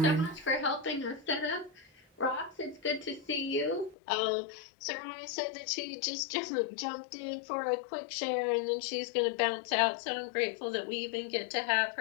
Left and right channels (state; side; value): drops out; right; at 4.0 s